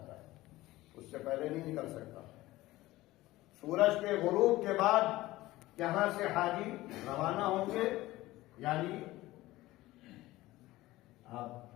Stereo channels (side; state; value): right; quieter; 17.7 dB